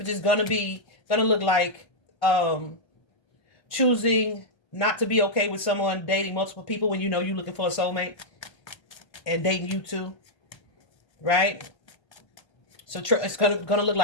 is going to look like choosing not to be okay with someone dating multiple people when you know you're looking for a soulmate and dating you too, right? So it's going to look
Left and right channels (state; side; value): late; right; 1.3 ms